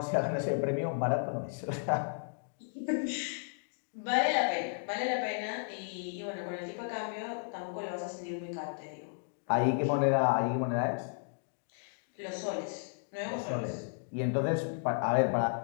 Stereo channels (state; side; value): silent; right; digital silence